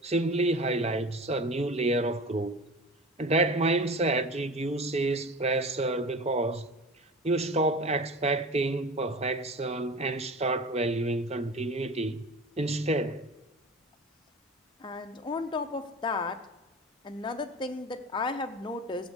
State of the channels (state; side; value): normal; both; correlation 0.35